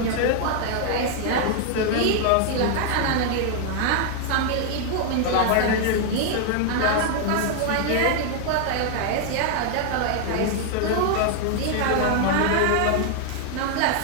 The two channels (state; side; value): different; both; correlation 0.00